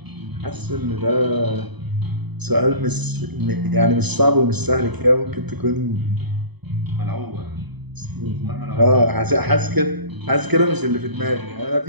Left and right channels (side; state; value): left; late; 0.99 ms